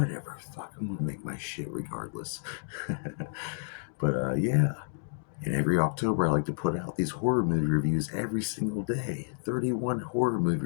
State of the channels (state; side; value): silent; right; digital silence